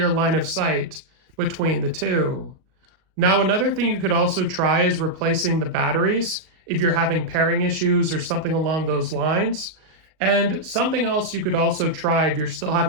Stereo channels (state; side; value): late; left; 38 ms